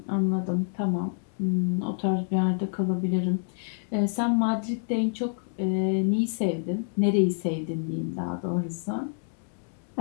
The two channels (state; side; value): silent; right; digital silence